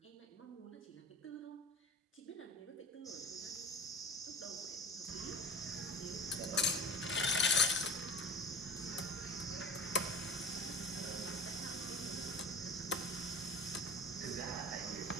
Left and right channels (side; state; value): both; normal; correlation 0.36